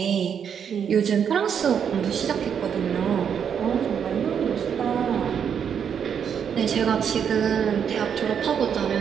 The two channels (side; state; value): left; quieter; 7.8 dB